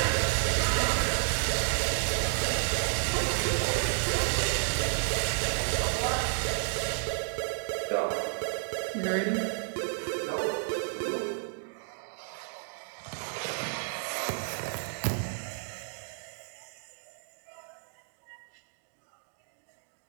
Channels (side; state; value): left; silent; digital silence